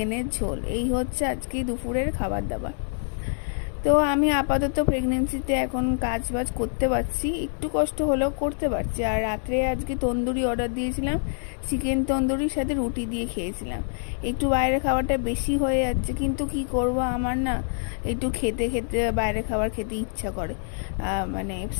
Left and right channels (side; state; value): right; silent; 61 dB below the other